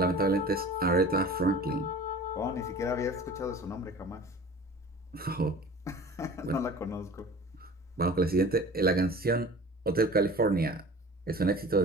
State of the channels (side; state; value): both; normal; correlation 0.41